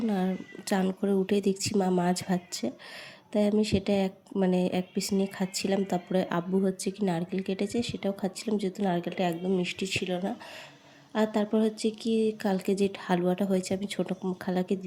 আর চান করে উঠেই দেখছি মা মাছ ভাজছে, তাই আমি সেটা এক পিস নিয়ে খাচ্ছিলাম। তারপরে আব্বু কি নারকেল কেটেছে, সেটাও খাচ্ছিলাম, যেহেতু নারকেলটা একদম মিষ্টি ছিল না। আর তারপর কি কালকে যে হালুয়াটা হয়েছে আমি ছোটো খালাকে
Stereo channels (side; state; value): both; identical; correlation 1.00